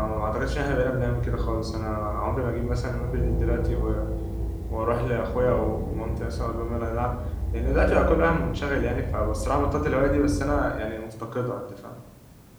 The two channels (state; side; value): identical; both; correlation 1.00